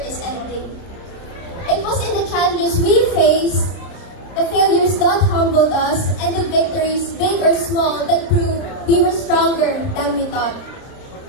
is ending. It was in the challenges we faced, the failures that humbled us, and the victories, big or small, that proved we were stronger than we thought.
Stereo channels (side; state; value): right; late; 30 ms